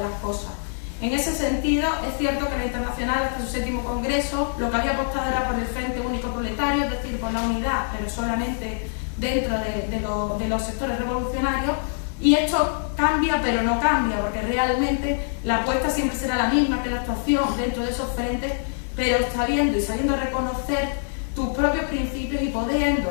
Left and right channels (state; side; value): silent; right; digital silence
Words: las cosas. En ese sentido, es cierto que la Internacional, hasta su 7º congreso, lo que había apostado era por el Frente Único Proletario, es decir, por la unidad, pero solamente dentro de los sectores revolucionarios, y esto cambia, pero no cambia, porque realmente la apuesta siempre será la misma, que la actuación dentro de esos frentes, pero sabiendo reconocer tus propios principios y